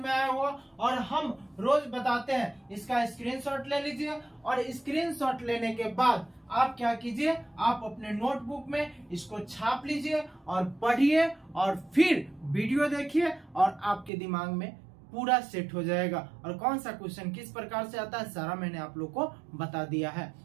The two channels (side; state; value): left; drops out; at 14.1 s